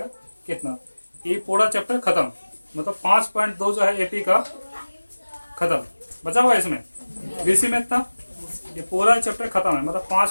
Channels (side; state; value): both; inverted; correlation -1.00